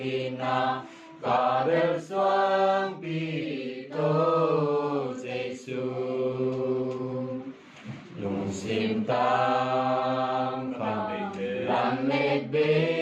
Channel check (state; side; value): identical; both; correlation 1.00